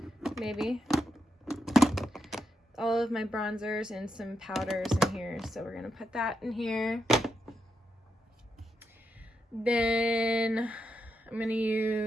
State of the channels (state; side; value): normal; both; correlation 0.84